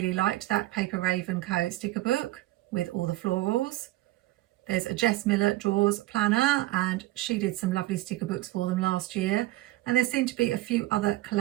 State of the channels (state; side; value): quieter; left; 17.5 dB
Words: liked that Paper Raven Co sticker book with all the florals. There's a Jess Miller Drawers planner, and she did some lovely sticker books for them last year, and there seem to be a few other